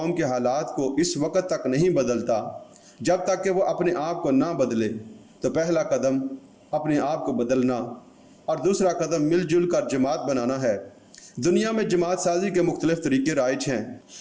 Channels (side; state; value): both; identical; correlation 1.00